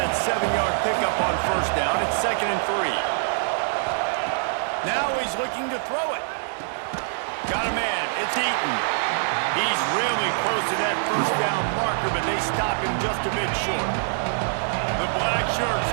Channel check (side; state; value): left; silent; 62 dB below the other